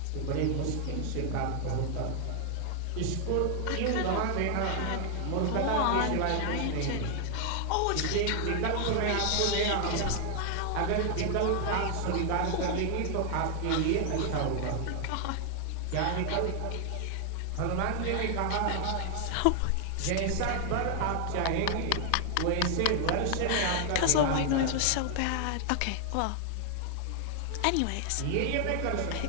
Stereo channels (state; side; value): different; both; correlation 0.00